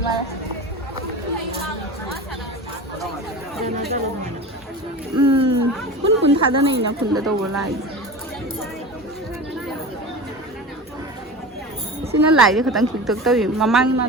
ma kun thada nei na kun da do lai sina lai de khatang khik tok tawi mamang ma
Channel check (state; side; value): normal; both; correlation 0.31